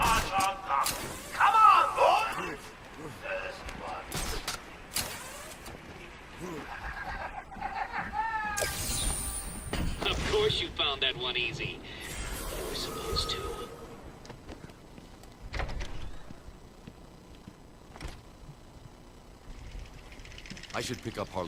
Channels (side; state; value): both; identical; correlation 1.00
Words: Of course you found that one easy. You were supposed to. I should pick up